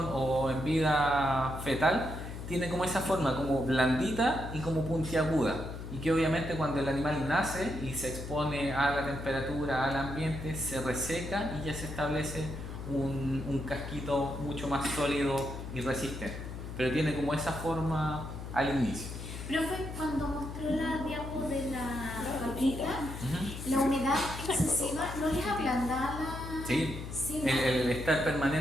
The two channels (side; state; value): left; noise; hum, 9 dB below the sound